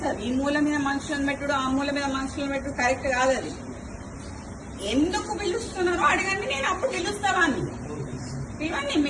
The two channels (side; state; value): both; identical; correlation 1.00